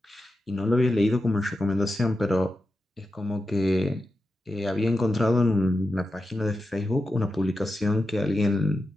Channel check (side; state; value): both; normal; correlation 0.90